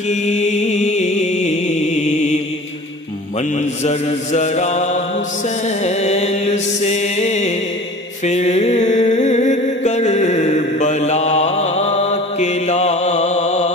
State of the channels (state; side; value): normal; both; correlation 0.42